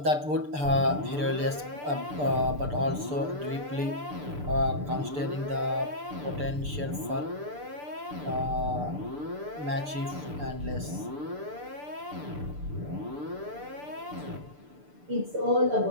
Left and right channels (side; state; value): left; late; 6.8 ms